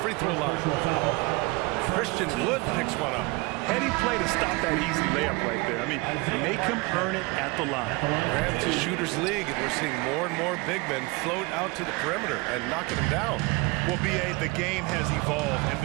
throw line. Christian Wood picks one up. Heady play to stop that easy layup right there. I mean, make him earn it at the line. It's a shooter's league, and we're seeing more and more big men float out to the perimeter and knocking them down. Well, B.A., the game has evolved, and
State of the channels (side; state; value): left; quieter; 25.5 dB